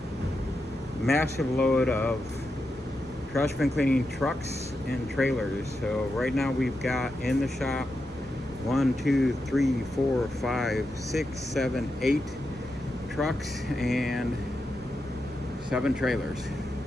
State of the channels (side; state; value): both; normal; correlation 0.87